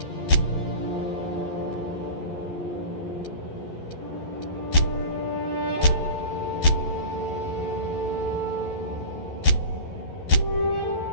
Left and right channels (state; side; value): late; right; 11 ms